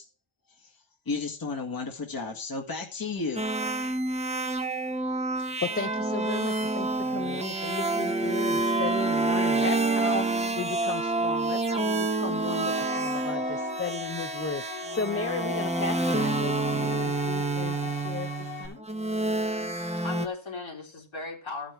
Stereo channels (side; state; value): both; normal; correlation 0.36